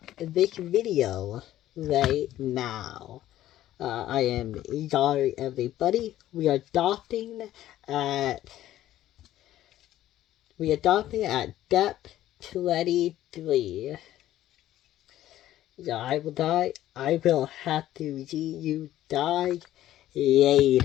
this video right now. I am sorry everybody. We are stopping at depth 23. So I will die. I will have to see you die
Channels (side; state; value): right; quieter; 13.5 dB